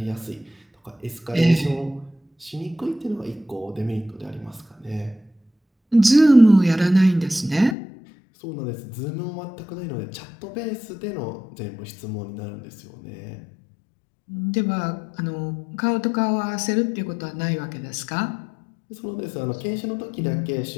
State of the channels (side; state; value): right; drops out; at 7.8 s